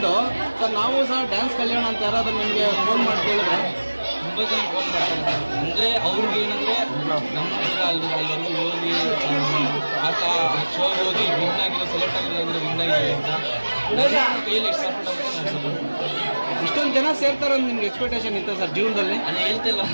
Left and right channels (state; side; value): inverted; both; correlation -1.00